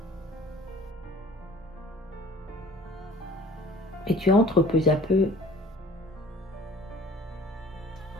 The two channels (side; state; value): both; normal; correlation 0.48